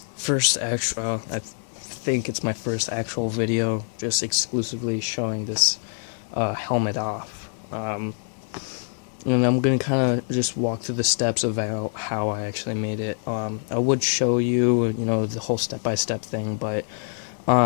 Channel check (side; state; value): right; silent; digital silence